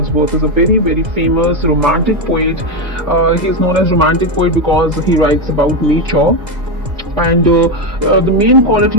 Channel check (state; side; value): late; left; 2.0 ms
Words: is a very famous romantic poet. He is known as romantic poet because he writes about nature. And the main